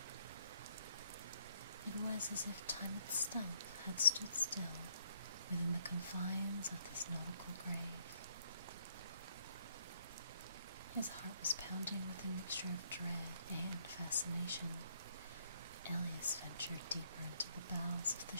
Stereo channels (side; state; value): both; inverted; correlation -0.67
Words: It was as if time itself had stood still within the confines of this nautical grave. His heart was pounding with a mixture of dread and fascination. Elias ventured deeper into the bowels of the